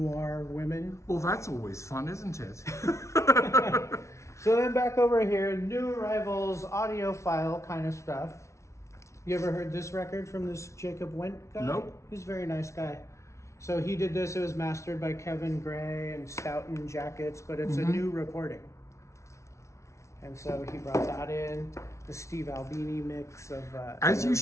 women. Well, that's always fun, isn't it? So then back over here, New Arrivals, audiophile kind of stuff. You ever heard this record from this Jacob Went guy? Nope. He's a very nice guy. So he did this, it was mastered by Kevin Gray and Stoughton Jackets, but it's a new recording. And so he brought that in, the Steve Albini mix of As you Nirvana.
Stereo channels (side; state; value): right; late; 0.14 ms